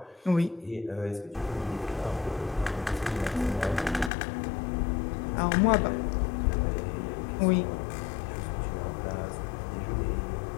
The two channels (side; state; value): right; drops out; at 4.1 s